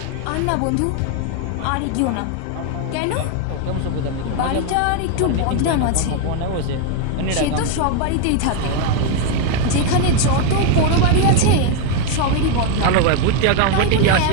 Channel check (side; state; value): both; different; correlation 0.01